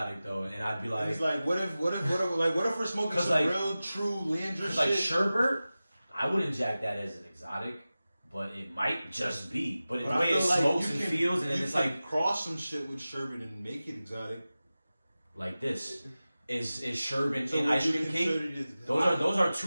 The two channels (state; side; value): inverted; both; correlation -0.96